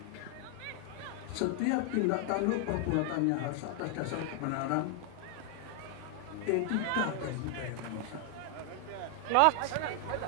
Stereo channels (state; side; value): different; both; correlation 0.00